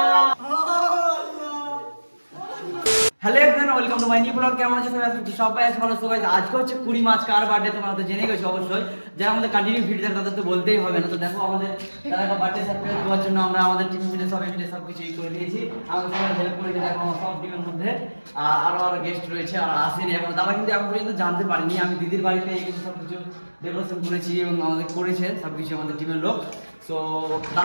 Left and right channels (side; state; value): both; inverted; correlation -1.00